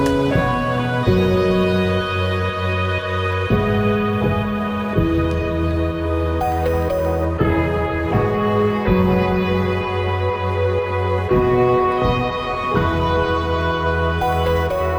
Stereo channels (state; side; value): identical; both; correlation 1.00